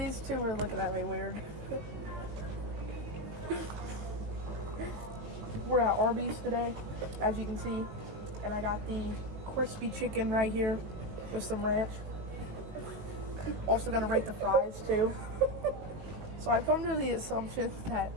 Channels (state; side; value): late; left; 19 ms